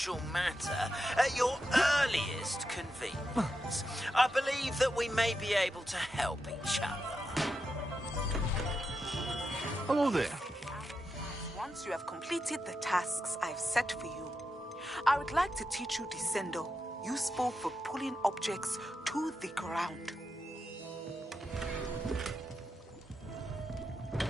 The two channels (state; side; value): normal; both; correlation 0.87